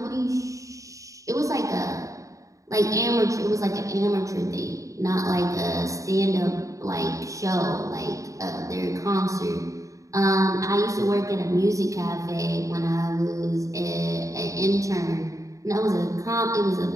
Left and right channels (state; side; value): late; left; 0.16 ms